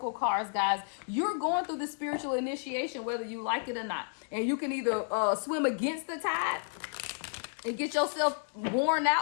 cards, guys. You're going through the spiritual initiation, whether you like it or not. And you can either swim against the tide and get yourself worn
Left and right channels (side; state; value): right; silent; digital silence